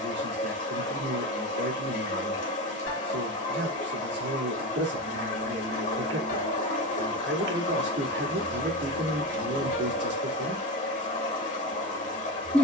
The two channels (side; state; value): both; normal; correlation 0.24